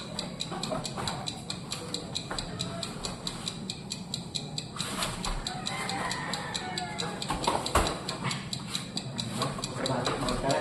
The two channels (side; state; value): both; identical; correlation 1.00